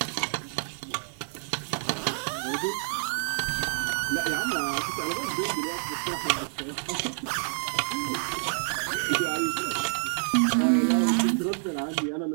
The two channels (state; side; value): silent; left; digital silence